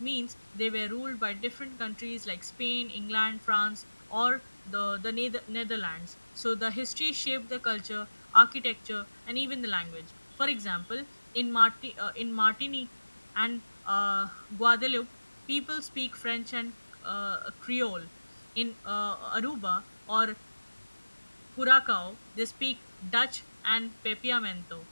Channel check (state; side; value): inverted; both; correlation -1.00